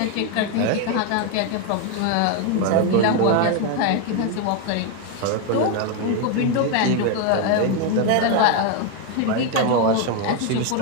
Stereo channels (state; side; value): different; both; correlation 0.01